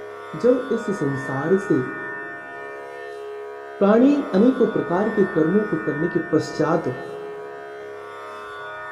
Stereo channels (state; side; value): identical; both; correlation 1.00